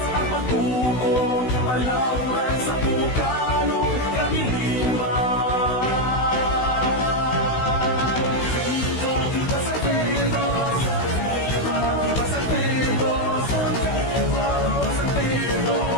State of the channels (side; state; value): right; late; 16 ms